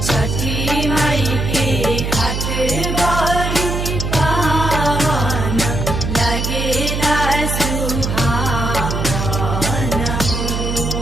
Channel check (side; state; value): right; noise; hum, 2 dB below the sound